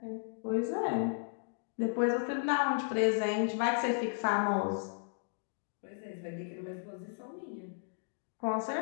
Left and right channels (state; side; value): silent; right; digital silence